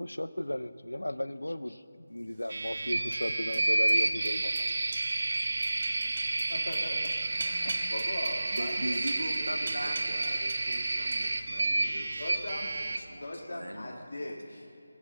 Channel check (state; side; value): inverted; both; correlation -0.97